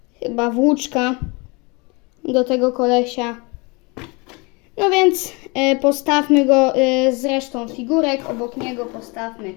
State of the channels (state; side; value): quieter; right; 28.3 dB